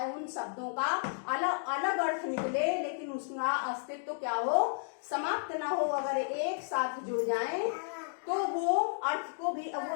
उन शब्दों का अलग अलग अर्थ निकले लेकिन उसका अस्तित्व क्या हो, समाप्त ना हो। अगर एक साथ जुड़ जाएं तो वो अर्थ को भी,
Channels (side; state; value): right; silent; digital silence